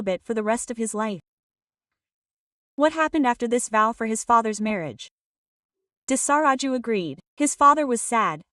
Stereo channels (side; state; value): both; identical; correlation 1.00